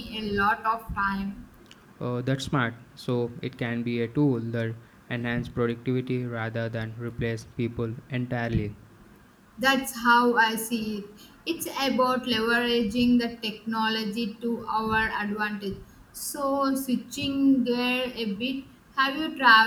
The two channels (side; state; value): both; identical; correlation 1.00